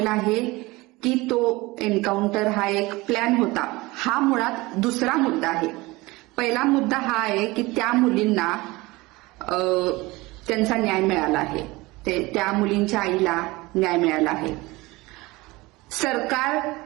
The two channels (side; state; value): left; quieter; 21.7 dB